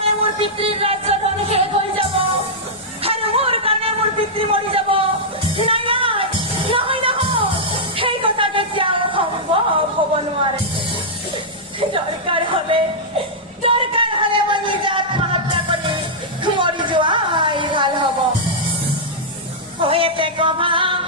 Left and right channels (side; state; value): both; normal; correlation -0.09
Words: মোর পিতৃর রাজ্য ধন শেষ হয়ে যাব আর মোর কারণে মোর পিতৃ মরি যাব নাই নাই নহয় নহয় সেই কথা কেতিয়াও সম্ভৱ হব নোৱাৰে দৰকাৰ হলে মই নিজে আত্মহত্যা কৰি মৰি যোৱাই ভাল হব হয়েতে কভা